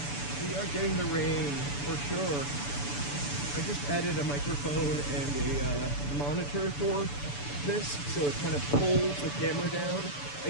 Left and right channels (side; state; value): right; late; 6.9 ms